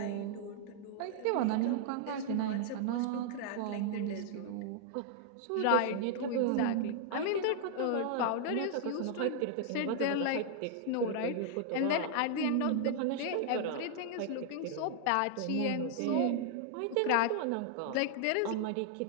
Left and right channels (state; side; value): different; both; correlation -0.01